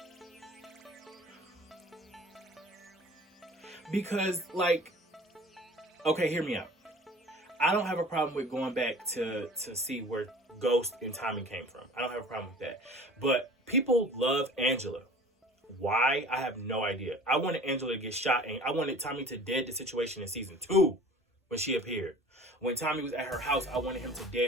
because like, okay, hear me out. I don't have a problem with going back to see where Ghost and Tommy came from. I don't have a problem with that. But people love Angela. Why? I have no idea. I wanted Angela to get shot, and I wanted Tommy to dead the situation in season 2 when she appeared. When Tommy was at her house, I wanted him to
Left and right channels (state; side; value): normal; both; correlation 0.44